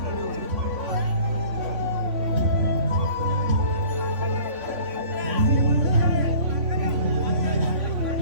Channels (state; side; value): late; left; 3.5 ms